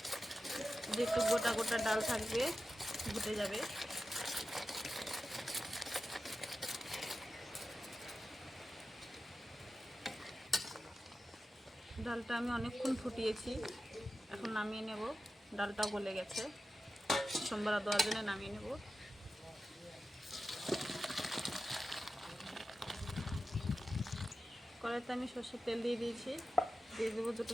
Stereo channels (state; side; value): normal; both; correlation 0.92